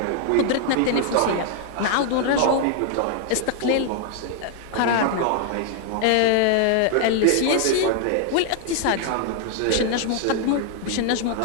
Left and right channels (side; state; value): both; different; correlation 0.00